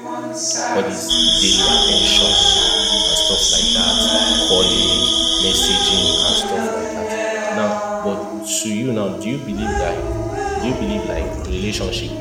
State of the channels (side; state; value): both; identical; correlation 1.00